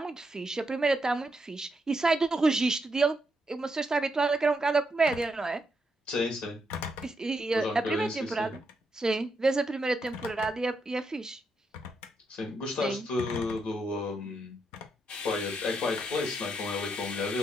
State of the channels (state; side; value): normal; both; correlation 0.80